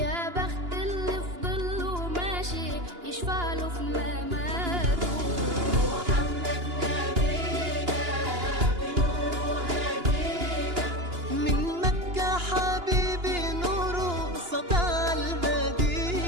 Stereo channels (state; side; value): late; left; 2.9 ms